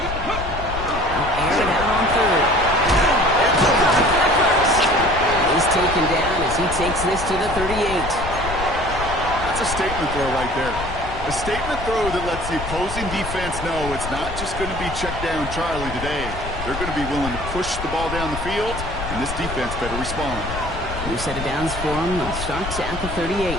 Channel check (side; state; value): left; noise; rumble, 8 dB below the sound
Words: out on 3rd. He's taken down as he takes this to the 38. That's a statement throw right there. A statement throw that lets the opposing defense know it's not just going to be check down Charlie today. They're going to be willing to push the ball down the field, and this defense better respond. New set of downs for him. They'll start at the 38.